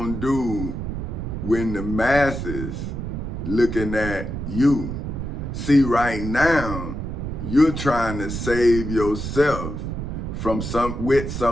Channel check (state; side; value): noise; right; rumble, 5 dB below the sound